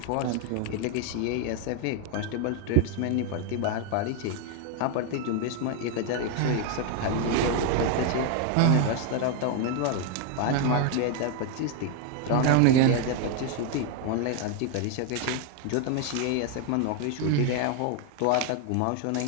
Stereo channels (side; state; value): both; different; correlation 0.01